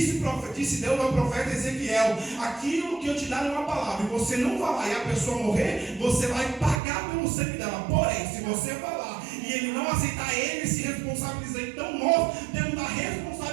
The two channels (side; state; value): left; drops out; at 6.8 s